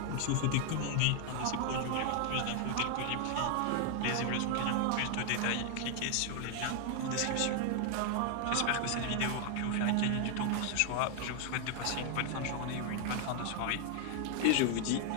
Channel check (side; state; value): both; different; correlation 0.00